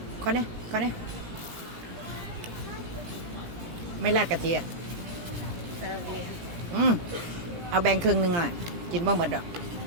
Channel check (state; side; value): late; left; 17 ms